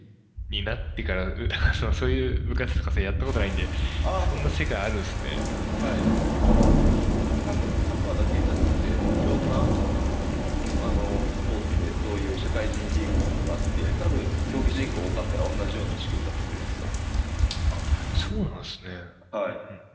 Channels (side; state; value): both; identical; correlation 1.00